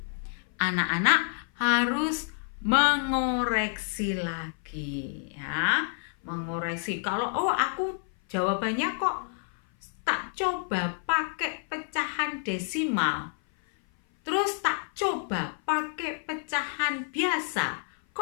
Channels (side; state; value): right; silent; 56 dB below the other